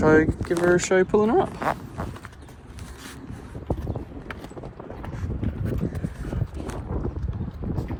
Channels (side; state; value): both; identical; correlation 1.00